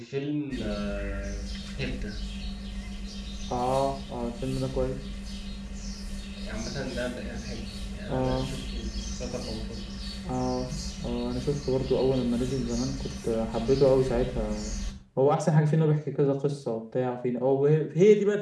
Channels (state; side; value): identical; both; correlation 1.00